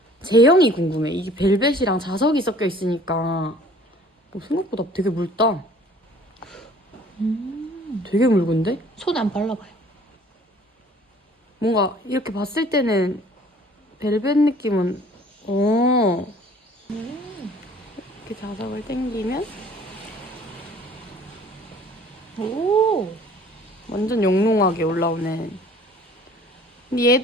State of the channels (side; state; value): both; normal; correlation 0.52